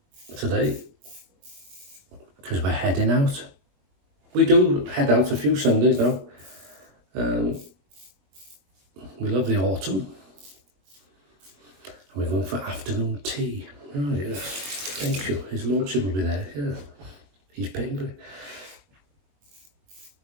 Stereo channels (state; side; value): late; left; 21 ms